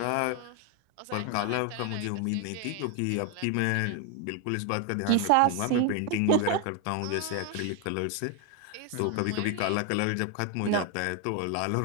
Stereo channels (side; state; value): both; different; correlation 0.01